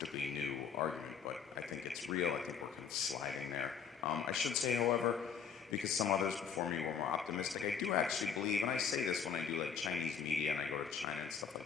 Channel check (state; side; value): quieter; right; 6.7 dB